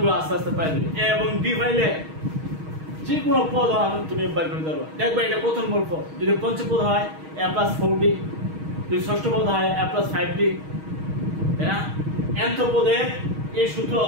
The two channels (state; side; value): late; left; 6.4 ms